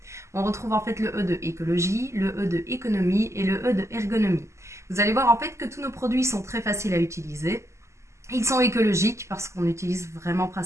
On retrouve en fait le E de écologie, le E de économie et le E de ergonomie. Vous allez voir en fait que tous nos produits sont très faciles à utiliser. Ils sont écologiques parce qu'on utilise vraiment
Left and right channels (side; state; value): left; late; 0.13 ms